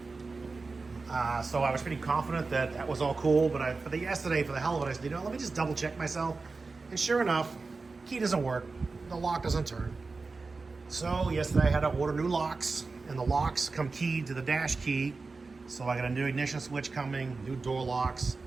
So I was pretty confident that that was all cool. But for the hell of it, I said, you know, let me just double check myself. And sure enough, key doesn't work. The lock doesn't turn. So yesterday I had to order new locks, and the locks come keyed to the dash key. So I got a new ignition switch coming, new door locks.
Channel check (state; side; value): quieter; left; 4.0 dB